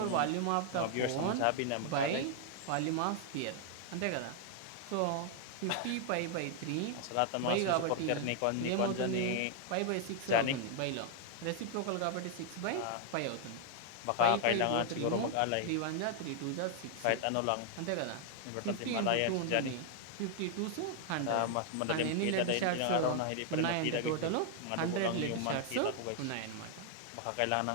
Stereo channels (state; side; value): different; both; correlation 0.00